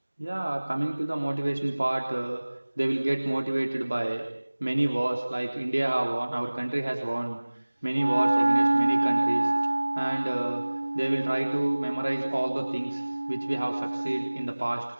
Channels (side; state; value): both; inverted; correlation -1.00